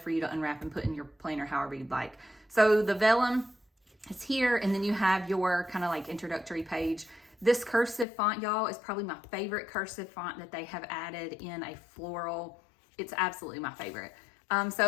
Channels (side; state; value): right; drops out; at 8.1 s